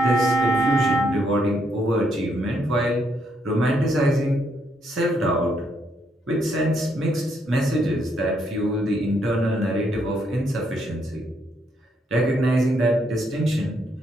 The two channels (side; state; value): both; normal; correlation 0.74